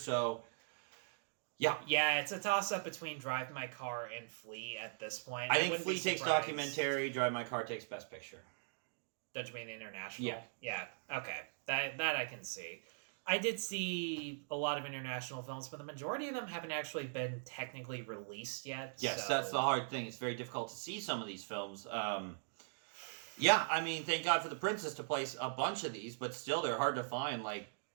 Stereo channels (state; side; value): silent; left; digital silence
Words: Yeah, it's a toss-up between Drive My Car and Flee at this point. I think Flee takes documentary, Drive My Car takes Best Picture. Don't you mean international? Yeah, okay. That I can see. I did see a lot of international films, but the majority of them haven't actually been technically released yet. Yes, that's the hard thing. It's very difficult to see some of these films. Thank God for The Princess to place a bunch of these, but still they're hard to find, like...